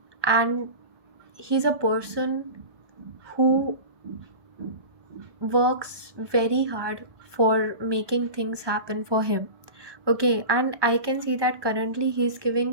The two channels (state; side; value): late; left; 1.2 ms